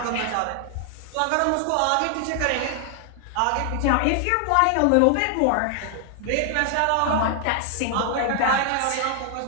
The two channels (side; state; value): both; different; correlation 0.00